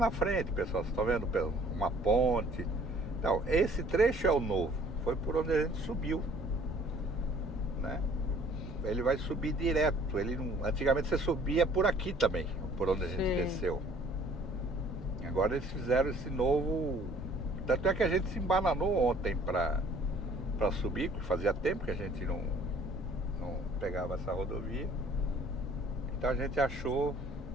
frente, pessoal, vocês estão vendo uma ponte. Então, esse trecho é o novo. Foi por onde a gente subiu, né? Ele vai subir direto. Antigamente você subia por aqui também, por onde a gente desceu. Agora eles fizeram esse novo Tanto é que a gente se embananou ontem para subir, porque fazia tempo que a gente não pegava essa rodovia. Então a gente achou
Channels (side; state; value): both; normal; correlation 0.56